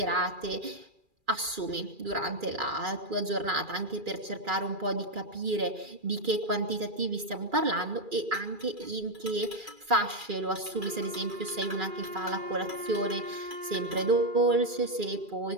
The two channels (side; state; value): left; late; 2.4 ms